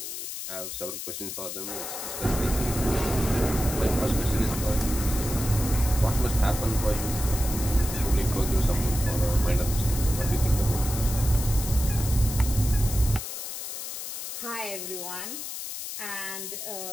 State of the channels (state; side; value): noise; left; hiss, 7 dB below the sound